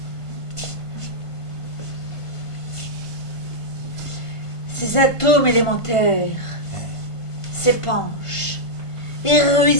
Ces atomes élémentaires s'épanchent et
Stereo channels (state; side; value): late; right; 1.5 ms